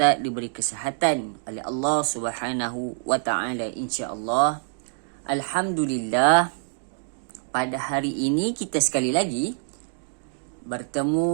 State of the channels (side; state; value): left; silent; 61 dB below the other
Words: diberi kesihatan oleh Allah Subhanahu wa taala insya-Allah. Alhamdulillah, pada hari ini kita sekali lagi